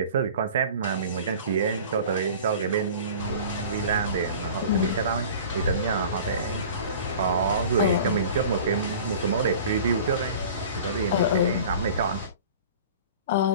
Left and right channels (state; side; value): inverted; both; correlation -0.42